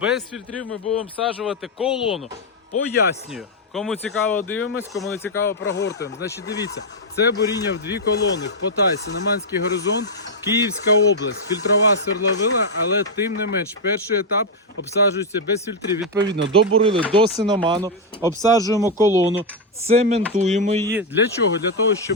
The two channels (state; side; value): normal; both; correlation 0.00